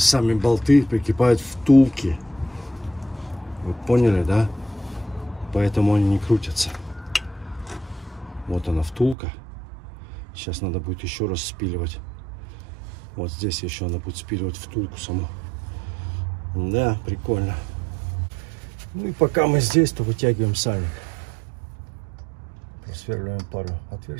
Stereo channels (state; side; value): drops out; left; at 9.2 s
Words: болты прикипают втулки. Вы поняли, да? Поэтому они не крутятся. Вот она втулка. Сейчас надо будет еще раз спиливать. Вот здесь еще надо будет спиливать втулку саму. Да, прикольно. Ну и пока мы здесь, то вытягиваем сальник. Просверливаем пару